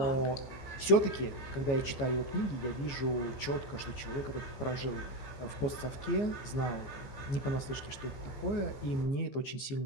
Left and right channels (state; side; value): late; right; 15 ms